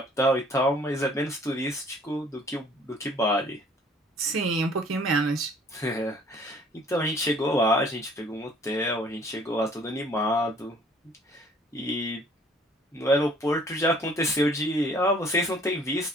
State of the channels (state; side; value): normal; both; correlation 0.56